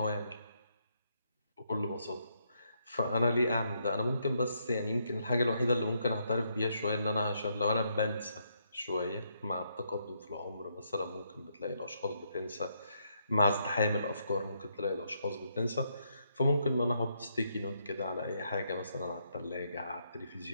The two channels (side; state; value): both; inverted; correlation -0.76